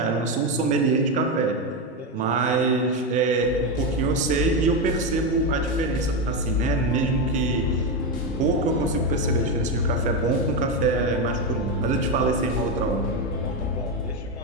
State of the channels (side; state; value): both; normal; correlation 0.10